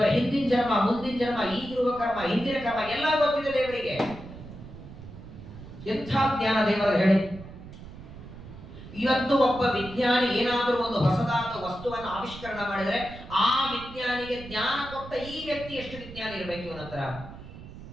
ಹಿಂದಿನ ಜನ್ಮ, ಮುಂದಿನ ಜನ್ಮ, ಈಗಿರುವ ಕರ್ಮ, ಹಿಂದಿನ ಕರ್ಮ ಎಲ್ಲ ಗೊತ್ತಿದೆ ದೇವರಿಗೆ. ಎಂಥ ಜ್ಞಾನ ದೇವರ ಹೇಳಿ. ಇವತ್ತು ಒಬ್ಬ ವಿಜ್ಞಾನಿ ಏನಾದರೂ ಒಂದು ಹೊಸದಾದ ವಸ್ತುವನ್ನು ಆವಿಷ್ಕರಣ ಮಾಡಿದರೆ ಆ ವಿಜ್ಞಾನಿಗೆ ಜ್ಞಾನ ಕೊಟ್ಟ ಈ ವ್ಯಕ್ತಿ ಎಷ್ಟು ವಿಜ್ಞಾನಿ ಇರಬೇಕು ಇವನ ಹತ್ರ?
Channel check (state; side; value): noise; right; rumble, 15 dB below the sound